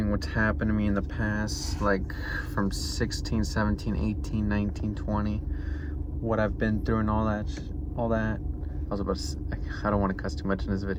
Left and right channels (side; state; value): both; identical; correlation 1.00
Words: what's happened to me in the past, like from 16, 17, 18, 19, 20, what I've been through and all that. I was about to say, I don't want to cuss too much in this